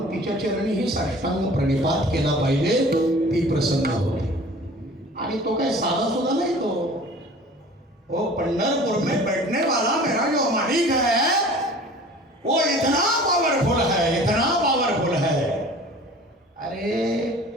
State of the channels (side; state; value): both; normal; correlation 0.45